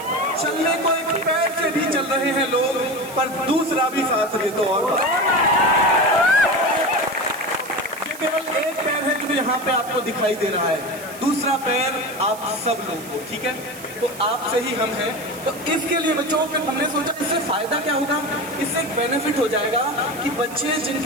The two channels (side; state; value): right; noise; hiss, 16 dB below the sound